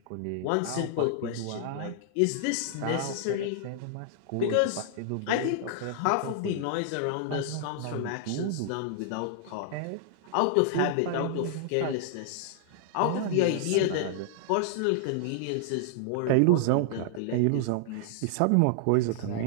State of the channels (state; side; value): different; both; correlation -0.01